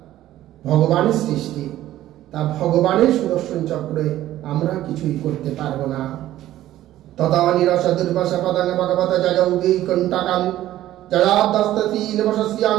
ভগবানের সৃষ্টি, তা ভগবানের সুদর্শন চক্রে আমরা কিছুই করতে পারবো না। তথা নিরস দুর্বাসা পদাঙ্গ ভগবত জয়ৌগী কণ্টাকাল জয়াদস্তীন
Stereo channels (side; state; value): left; quieter; 13.8 dB